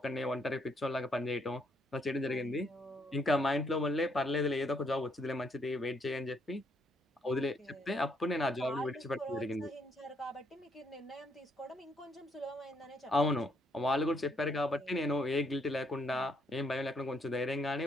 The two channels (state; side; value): normal; both; correlation 0.72